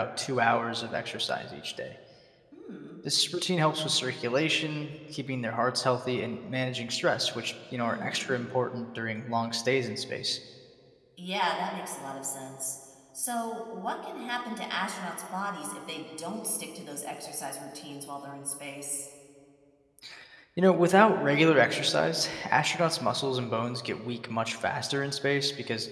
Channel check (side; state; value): both; identical; correlation 1.00